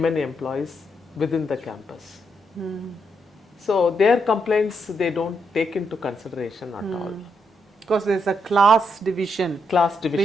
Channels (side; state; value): both; normal; correlation 0.78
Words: employees within the campus. So their complaints, they don't take into consideration at all. Because there's a class division